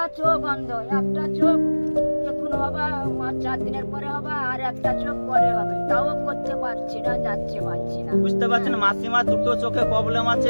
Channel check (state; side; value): inverted; both; correlation -1.00